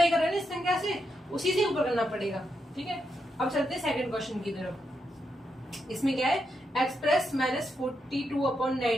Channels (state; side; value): normal; both; correlation 0.83